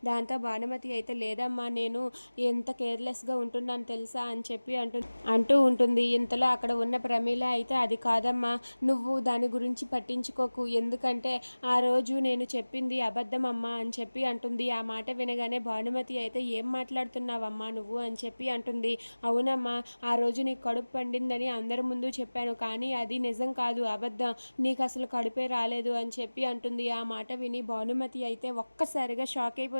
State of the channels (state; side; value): inverted; both; correlation -1.00